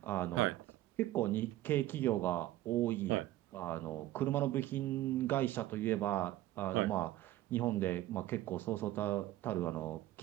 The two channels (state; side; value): quieter; left; 15.2 dB